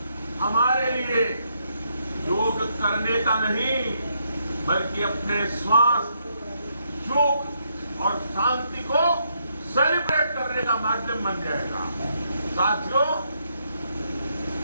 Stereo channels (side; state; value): both; inverted; correlation -0.76